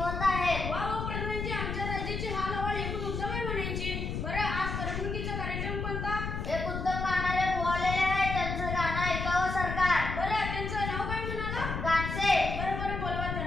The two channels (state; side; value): noise; left; rumble, 4 dB below the sound